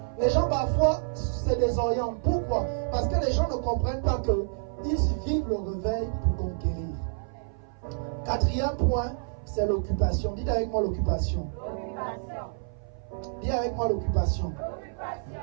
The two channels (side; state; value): left; silent; 56 dB below the other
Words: Les gens parfois se désorientent. Pourquoi? Parce que les gens ne comprennent pas qu'ils vivent le réveil pour conquérir. Quatrième point, c'est l'occupation. Dites avec moi l'occupation. Dis avec moi l'occupation.